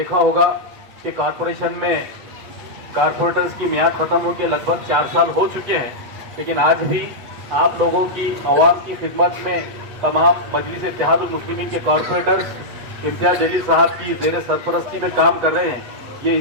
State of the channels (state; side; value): late; left; 8.5 ms